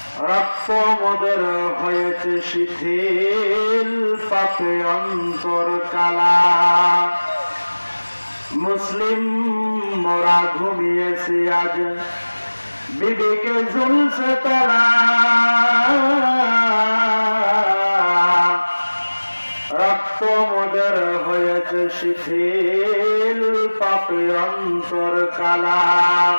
রক্ত মোদের হয়েছে শিথিল, পাপে অন্তর কালা। মুসলিম মোরা ঘুমিয়েছি আজ, বিবেকে ঝুলছে তালা। রক্ত মোদের হয়েছে শিথিল, পাপে অন্তর কালা।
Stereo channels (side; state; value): both; inverted; correlation -1.00